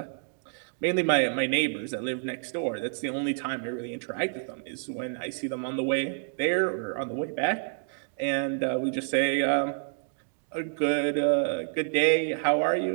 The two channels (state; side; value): silent; left; digital silence